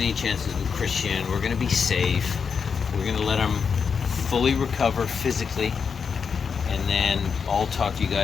any chances with Christian. We're going to be safe. We're going to let him fully recover physically. And then I'll talk to you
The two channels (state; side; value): quieter; right; 6.1 dB